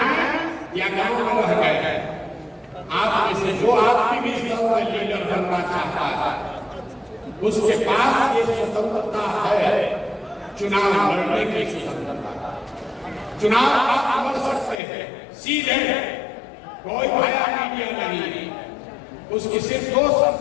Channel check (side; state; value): right; drops out; at 14.8 s